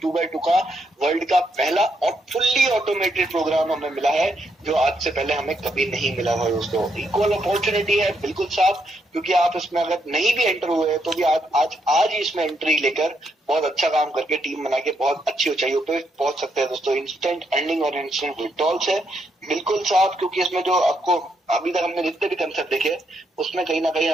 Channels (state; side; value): normal; both; correlation 0.77